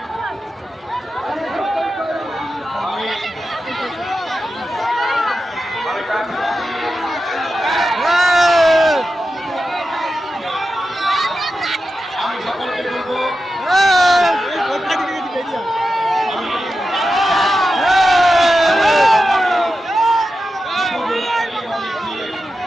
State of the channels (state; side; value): normal; both; correlation 0.91